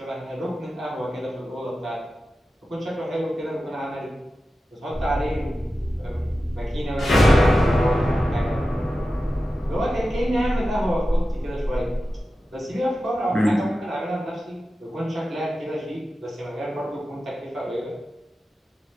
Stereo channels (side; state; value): both; normal; correlation 0.93